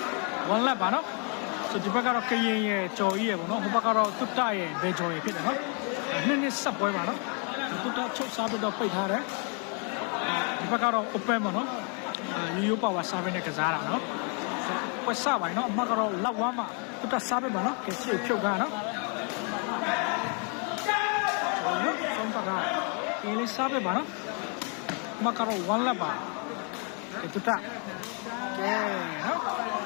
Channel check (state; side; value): quieter; right; 38.0 dB